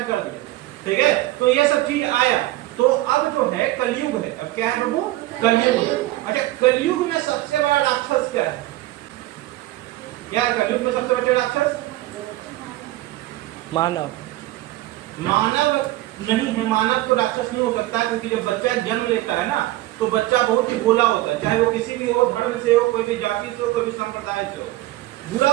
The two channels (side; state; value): left; quieter; 17.0 dB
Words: कर दी, ठीक है। तो ये सब चीज आया। तो अब जो है कलयुग है, अब क्या है प्रभु, कलयुग। अच्छा, कलयुग में सबसे बड़ा राक्षस क्या है, क्या है कलयुग में सबसे बड़ा राक्षस, मानव। मानव नहीं है, मानव तो राक्षस नहीं हो सकता, क्योंकि जब बच्चा जन्म लेता है ना तो बच्चा बहुत ही भोला होता है, चाहे वो किसी भी हो, धर्म से हो, कोई भी जाति से हो, कोई भी संप्रदाय से हो।